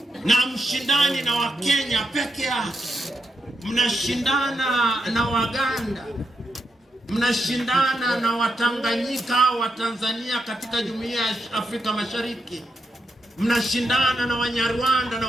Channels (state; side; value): normal; both; correlation 0.83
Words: na mshindani na Wakenya peke yake. Mnashindana na Waganda, mnashindana na Watanganyika au Watanzania katika Jumuiya ya Afrika Mashariki, mnashindana na Wanyarwanda na